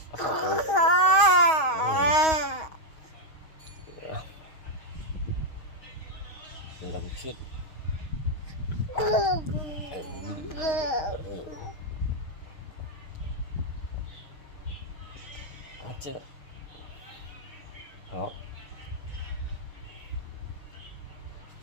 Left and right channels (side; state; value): right; late; 6.3 ms